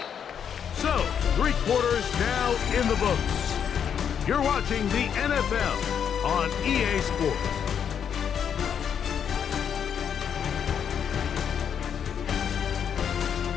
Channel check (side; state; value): right; quieter; 8.0 dB